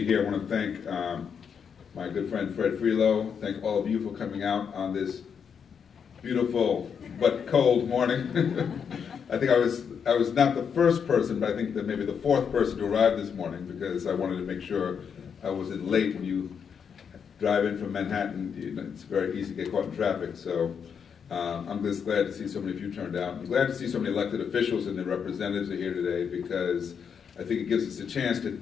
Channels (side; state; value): right; quieter; 7.0 dB